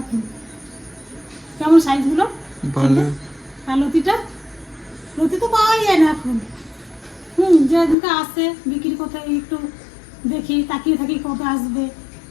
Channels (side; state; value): right; drops out; at 8.0 s